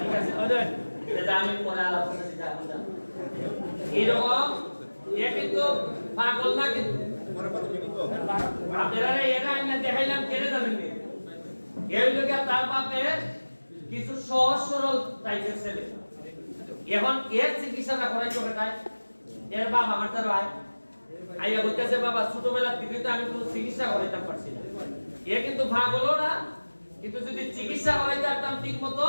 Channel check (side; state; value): both; inverted; correlation -1.00